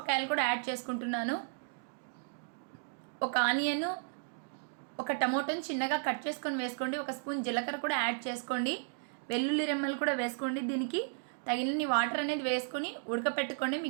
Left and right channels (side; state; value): left; silent; digital silence